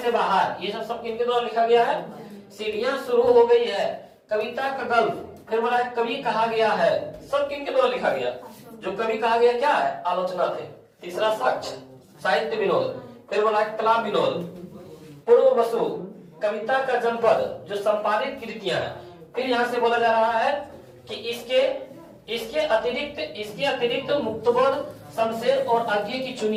बाहर, ये सब किनके द्वारा लिखा गया है? सीढ़ियां शुरू हो गई है, कविता का गल्फ। फिर बोला कवि कहा गया है, सब किनके द्वारा लिखा गया? जो कवि कहा गया क्या है? आलोचना थे। तीसरा साक्ष्य, साहित्य विनोद। फिर बोला कला विनोद, पूर्व वसु, कविता का जनपद, जो संपादित कृतियां हैं। फिर यहाँ से बोला जा रहा है कि इसके अतिरिक्त मुक्तबोध, शमशेर और अज्ञे की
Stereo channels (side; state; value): both; identical; correlation 1.00